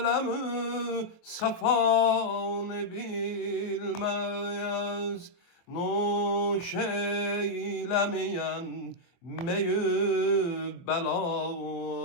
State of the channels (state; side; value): late; right; 24 ms